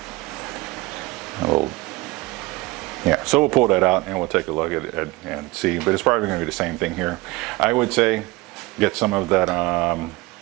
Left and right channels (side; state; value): left; quieter; 21.8 dB